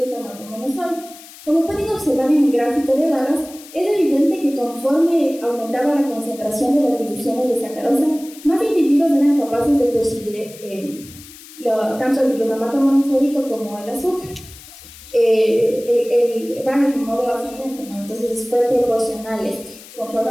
monosódico, como pueden observar en el gráfico de barras, es evidente que conforme aumentaba la concentración de las divisiones de sacarosa, más individuos eran capaces de percibir tanto el glutamato monosódico como el azúcar. Van en modo ascendente, ¿no? Entonces fue proporcional. Conforme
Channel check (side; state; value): left; noise; hiss, 19 dB below the sound